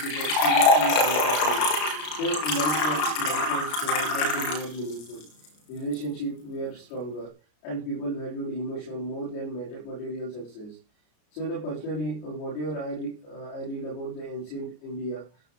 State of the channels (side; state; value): right; late; 34 ms